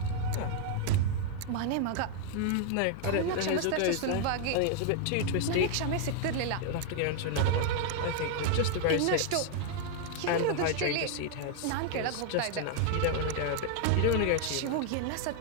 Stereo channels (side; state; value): both; different; correlation 0.00